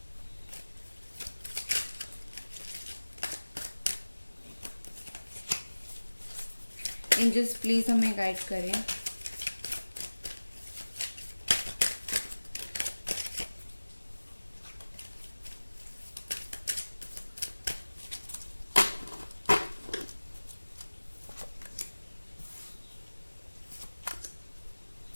एंजल्स प्लीज़ हमें गाइड करें।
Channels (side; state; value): both; inverted; correlation -1.00